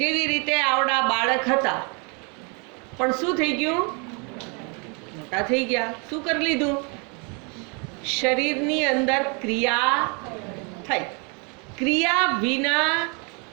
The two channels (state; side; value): quieter; left; 34.3 dB